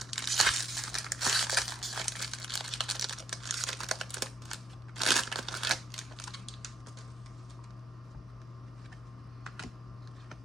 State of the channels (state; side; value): normal; both; correlation 0.74